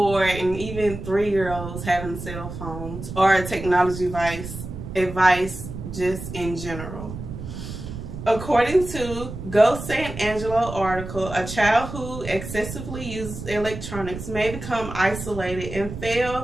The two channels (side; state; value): right; noise; rumble, 9 dB below the sound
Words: and even 3-year-olds having cell phones or a technology advice just in general. According to Go San Angelo article, a child who excessively uses electronics may become isolated and